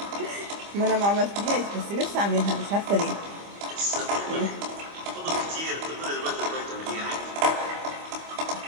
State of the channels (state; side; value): late; left; 25 ms